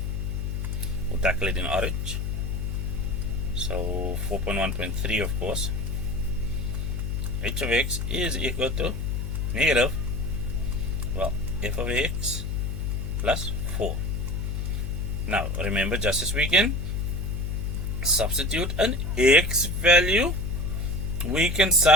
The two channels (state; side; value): noise; left; hum, 2 dB below the sound